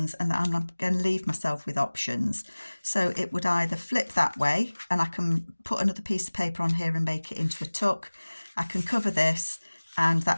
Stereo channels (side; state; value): both; inverted; correlation -1.00